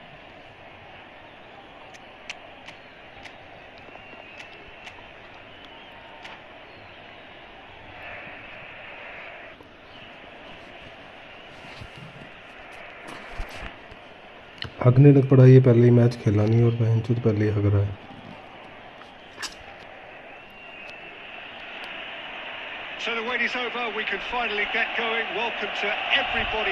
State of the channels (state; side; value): identical; both; correlation 1.00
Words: हगने लग पड़ा ये पहले ही मैच खेला नहीं और बहन चोद पहले ही हग रहा है So the wait is over, we can finally get going. Welcome to everybody